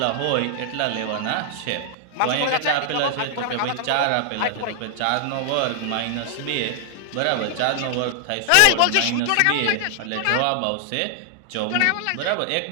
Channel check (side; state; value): both; different; correlation 0.00